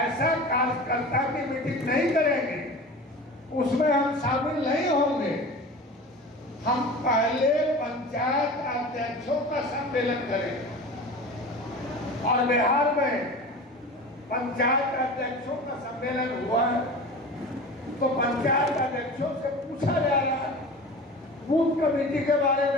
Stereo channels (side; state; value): both; normal; correlation 0.35